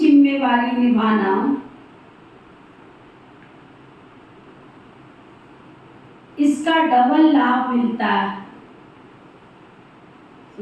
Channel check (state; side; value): identical; both; correlation 1.00